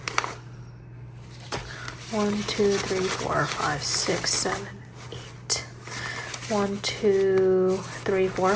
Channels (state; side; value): identical; both; correlation 1.00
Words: 1, 2, 3, 4, 5, 6, 7, 8. 1, 2, 3, 4,